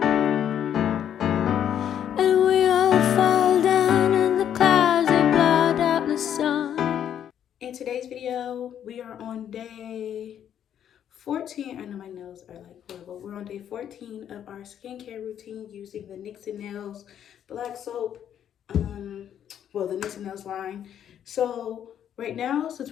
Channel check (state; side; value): quieter; right; 9.7 dB